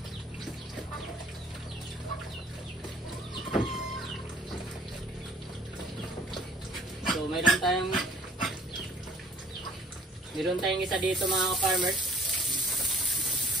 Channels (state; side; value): normal; both; correlation 0.55